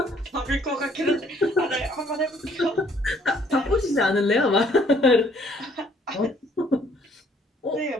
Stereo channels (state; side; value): normal; both; correlation 0.62